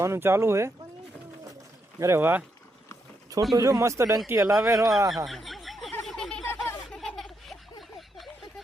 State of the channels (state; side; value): normal; both; correlation 0.80